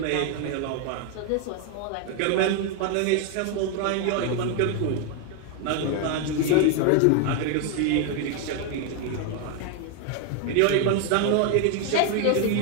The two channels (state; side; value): different; both; correlation 0.01